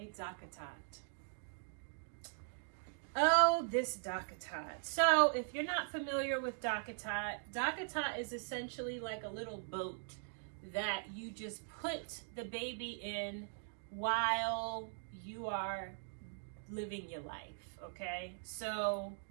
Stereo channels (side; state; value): left; silent; digital silence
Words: Dockatot. Oh, this Dockatot. So if you're not familiar with Dockatot, Dockatot is essentially like a little boat that you just put the baby in while you are living your life, okay? So